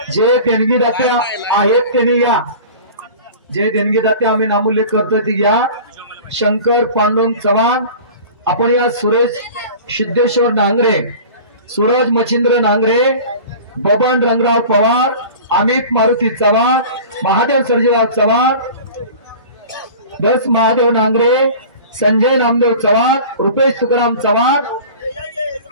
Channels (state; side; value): inverted; both; correlation -0.39